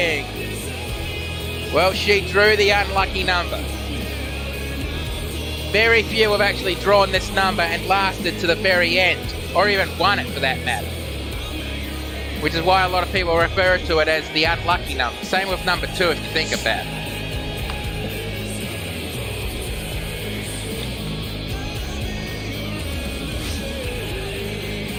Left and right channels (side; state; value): both; identical; correlation 1.00